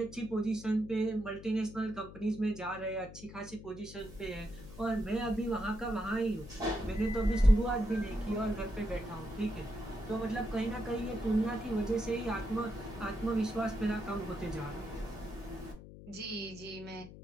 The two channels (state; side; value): noise; left; hum, 15 dB below the sound